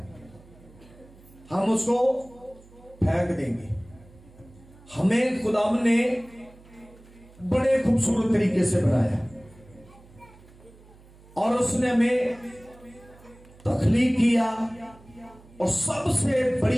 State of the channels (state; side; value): noise; right; hum, 24 dB below the sound